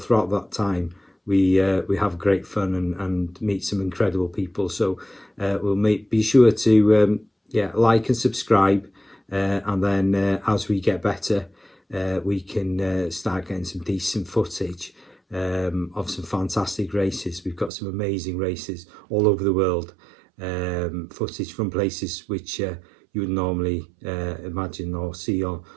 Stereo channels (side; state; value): left; drops out; at 17.7 s